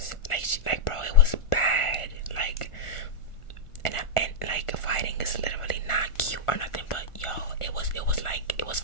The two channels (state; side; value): late; right; 1.4 ms